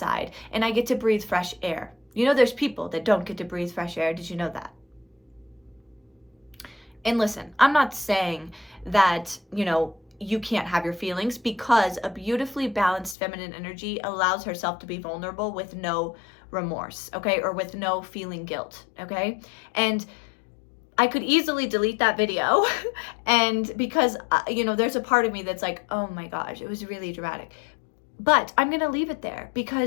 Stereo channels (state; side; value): drops out; right; at 13.2 s